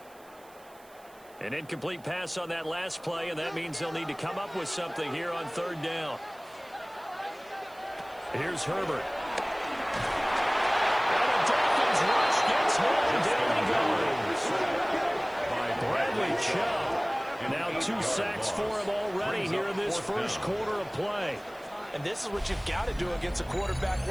An incomplete pass on that last play, and that means they'll need to come up with something here on third down. Here's Herbert. And the Dolphins rush gets home. Down he goes. By Bradley Chubb. Now 2 sacks for him already here in this first quarter of play. And this is what you've got to do against a quarterback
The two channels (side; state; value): right; noise; hiss, 26 dB below the sound